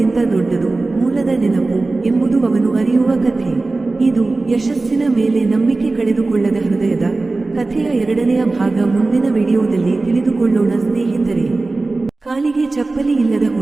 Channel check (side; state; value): left; quieter; 3.4 dB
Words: ದೊಡ್ಡದು ಮೂಲದ ನೆನಪು ಎಂಬುದು ಅವನು ಅರಿಯುವ ಕಥೆ. ಇದು ಯಶಸ್ಸಿನ ಮೇಲೆ ನಂಬಿಕೆ ಕಳೆದುಕೊಳ್ಳದ ಹೃದಯದ ಕಥೆಯ 2ನೇ ಭಾಗ. ಮುಂದಿನ ವಿಡಿಯೋದಲ್ಲಿ ತಿಳಿದುಕೊಳ್ಳೋಣ ಸ್ನೇಹಿತರೆ. ಕಾಲಿಗೆ ಚಪ್ಪಲಿ ಇಲ್ಲದ